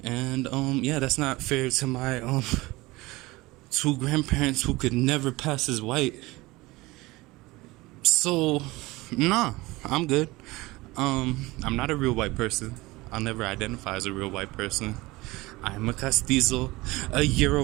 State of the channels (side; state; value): left; quieter; 20.9 dB